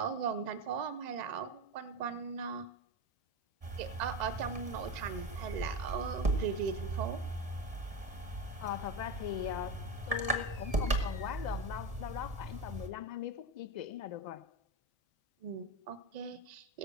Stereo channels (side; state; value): left; late; 1.7 ms